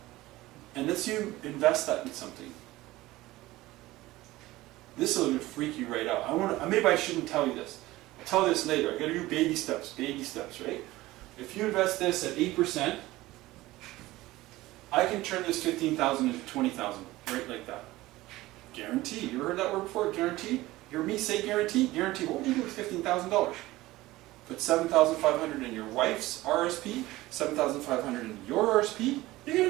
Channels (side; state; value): left; quieter; 18.0 dB